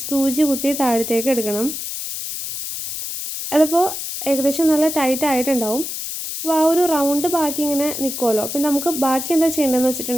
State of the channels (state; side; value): noise; left; hiss, 6 dB below the sound